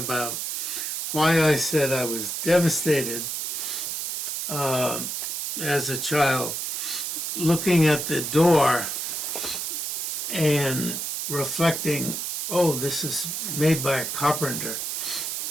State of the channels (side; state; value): right; noise; hiss, 2 dB below the sound